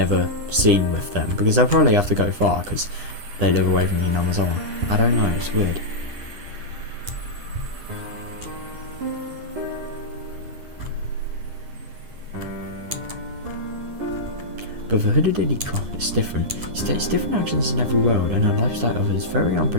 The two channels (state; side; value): late; left; 10 ms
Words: seen with them, because they'll probably have to go far, because they live away from Hinamazawa. I don't know, it's weird. But for Hooded Rika, it's different. She takes different actions in every world, and her lifestyle of it is very